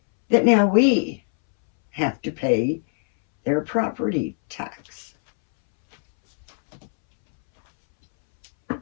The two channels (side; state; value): right; silent; 64 dB below the other